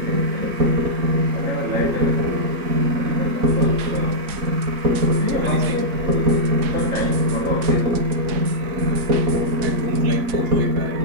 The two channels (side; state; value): left; late; 4.7 ms